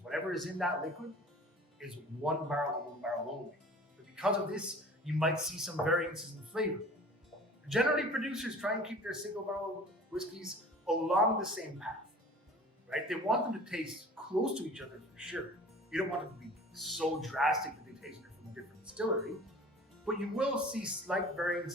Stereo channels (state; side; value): normal; both; correlation 0.44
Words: Whatever is in that liquid is one barrel and one barrel only. But because of this, you might see some variances in flavor. Generally, producers try and keep their single barrel whiskeys along the same path, right? They want them to taste close to each other for sure. You don't want them to be so drastic that they taste it from a different distillery, but you will see slight